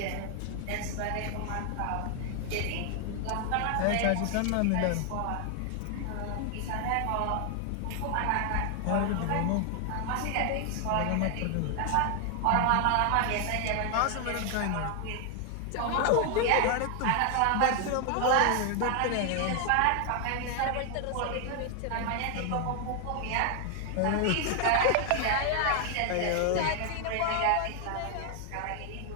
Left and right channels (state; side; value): different; both; correlation 0.00